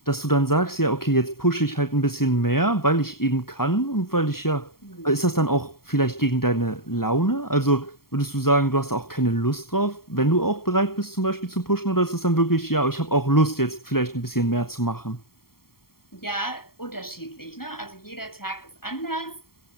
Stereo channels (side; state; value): right; late; 0.93 ms